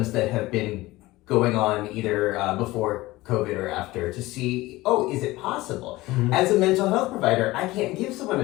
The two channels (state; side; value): quieter; right; 19.2 dB